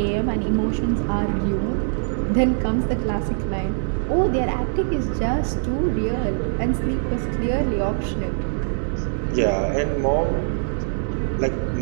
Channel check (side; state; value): left; silent; digital silence